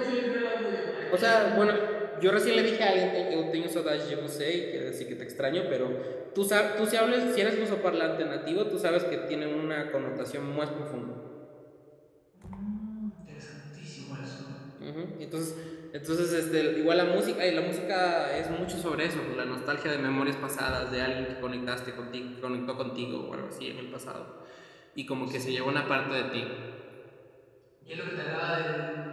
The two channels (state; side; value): identical; both; correlation 1.00